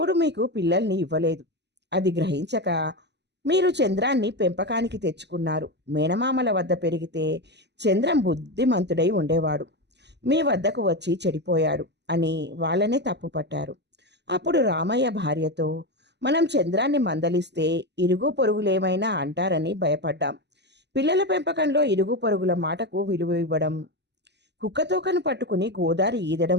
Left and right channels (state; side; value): late; left; 0.50 ms